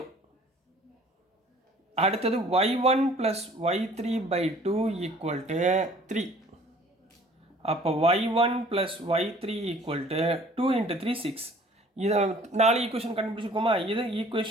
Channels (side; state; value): both; normal; correlation 0.53